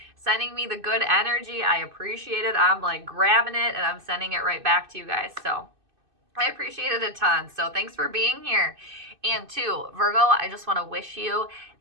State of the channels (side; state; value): left; late; 2.6 ms